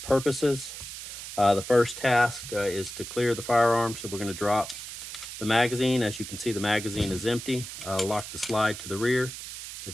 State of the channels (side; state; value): right; noise; hiss, 10 dB below the sound